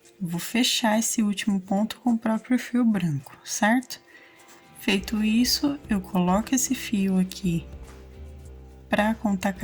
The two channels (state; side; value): identical; both; correlation 1.00